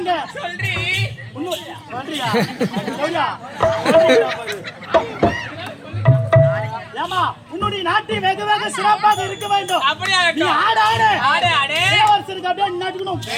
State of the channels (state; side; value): identical; both; correlation 1.00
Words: சொல்றி சொல்றியா? சொல்றியா? ஏமா உன்னுடைய நாட்டை வெகு வெகு சிறப்பாக இருக்க வேண்டும். அப்படியா? நீ ஆடு ஆடு ஆடு ஆடு இளவரசருக்கு அப்படியே நட்டுக்கணும்.